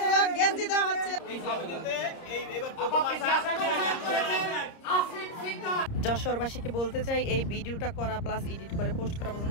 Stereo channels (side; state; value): right; late; 30 ms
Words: গেঞ্জি দেওয়া হচ্ছে। এই সমিতিতে এবার প্রথম আসা যশোরবাসীকে বলতে চাই, এই ভিডিওটা করা প্লাস এডিট করে পোস্ট করা